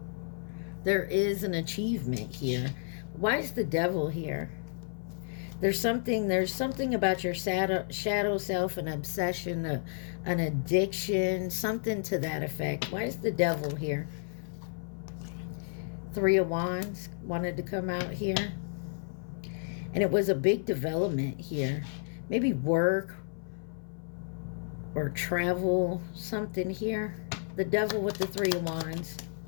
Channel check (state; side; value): silent; right; 57 dB below the other